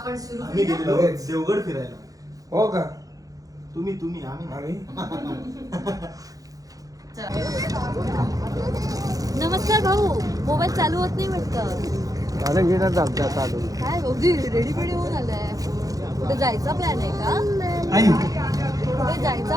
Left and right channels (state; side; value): late; left; 0.17 ms